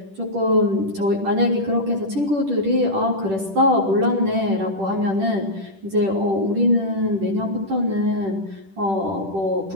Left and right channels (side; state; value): left; late; 10 ms